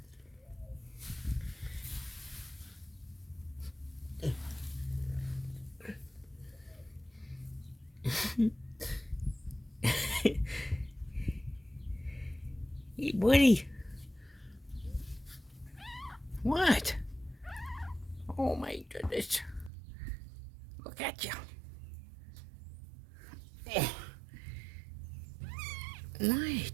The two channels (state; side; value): drops out; left; at 19.7 s